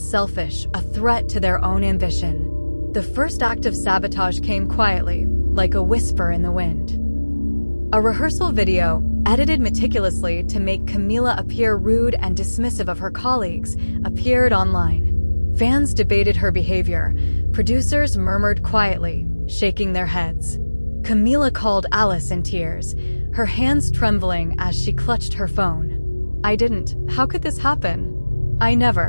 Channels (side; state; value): both; inverted; correlation -1.00